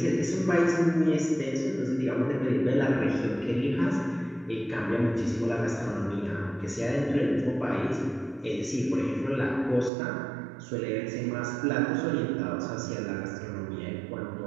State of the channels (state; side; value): drops out; left; at 9.9 s